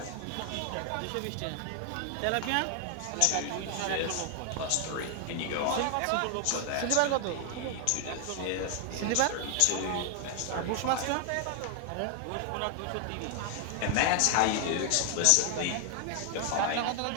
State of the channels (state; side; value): different; both; correlation 0.00